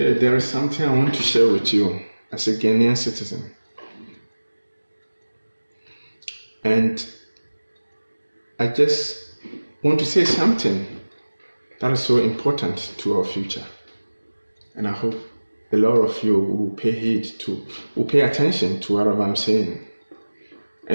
there is something I want to share with you as a Ghanaian citizen. And I just want to say something that is so important to our future. And I hope a lot of you will pay attention to what I'm saying. I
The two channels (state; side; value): inverted; both; correlation -1.00